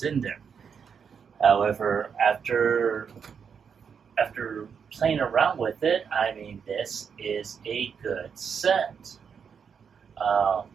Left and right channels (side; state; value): left; quieter; 6.7 dB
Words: in there. However, after playing around with it, I mean, this is a good set.